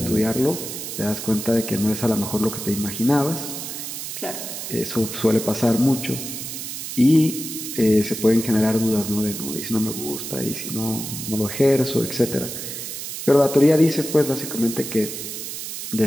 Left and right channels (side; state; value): right; noise; hiss, 7 dB below the sound